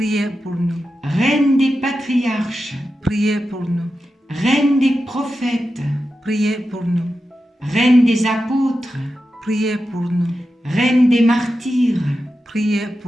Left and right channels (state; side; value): normal; both; correlation 0.91